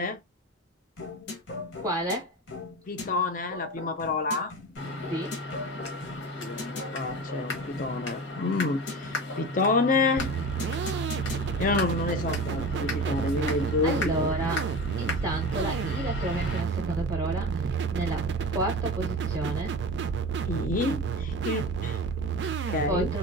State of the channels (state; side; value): normal; both; correlation 0.30